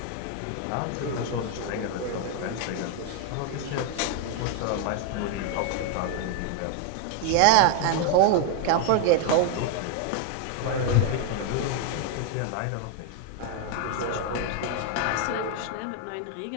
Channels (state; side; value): different; both; correlation 0.01